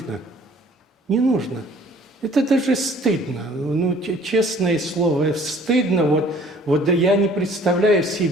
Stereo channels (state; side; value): normal; both; correlation 0.54